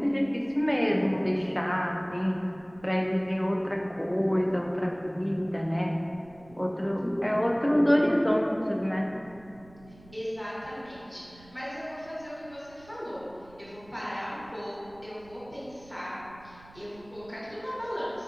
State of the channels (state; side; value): noise; right; rumble, 24 dB below the sound